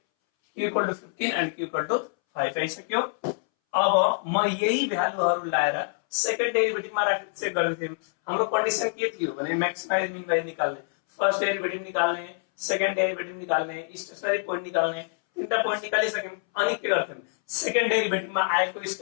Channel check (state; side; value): silent; right; 61 dB below the other